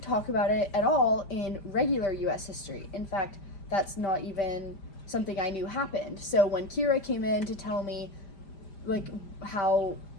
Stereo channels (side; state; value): right; late; 5.0 ms